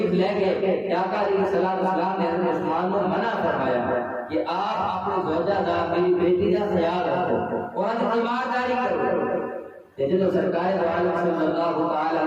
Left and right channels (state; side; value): identical; both; correlation 1.00